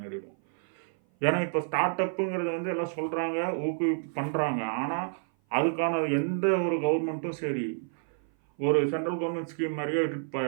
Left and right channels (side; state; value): left; silent; 56 dB below the other